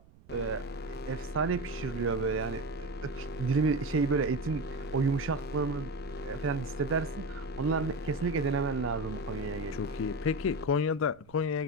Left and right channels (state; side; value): noise; right; rumble, 26 dB below the sound